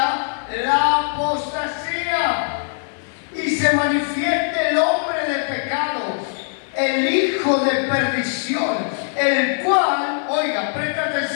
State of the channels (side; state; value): right; silent; digital silence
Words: la apostasía y se manifieste el hombre de pecado, el hijo de perdición, el cual, oiga, presta